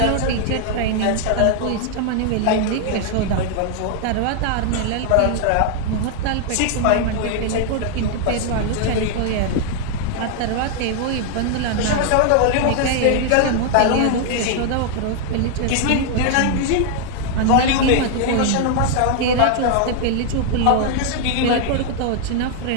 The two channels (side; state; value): both; different; correlation 0.00